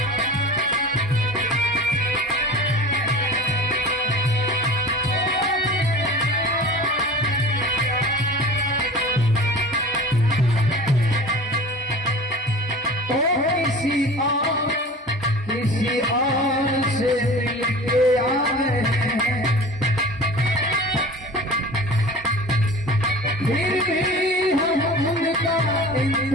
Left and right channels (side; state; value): both; normal; correlation 0.38